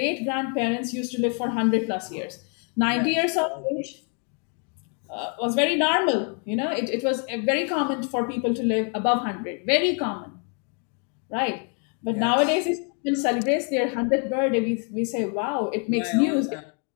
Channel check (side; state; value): right; quieter; 40.0 dB